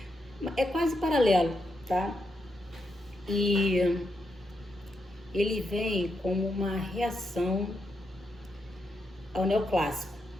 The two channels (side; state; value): both; normal; correlation 0.83